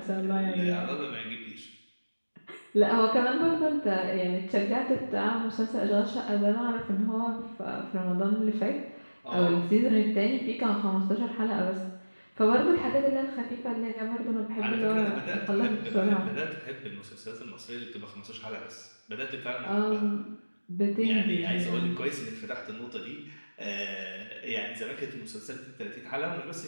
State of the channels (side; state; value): both; inverted; correlation -1.00